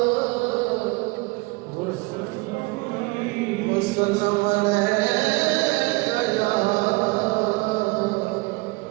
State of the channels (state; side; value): quieter; left; 25.4 dB